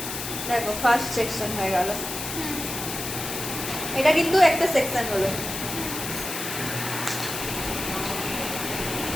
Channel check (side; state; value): left; noise; hiss, 5 dB below the sound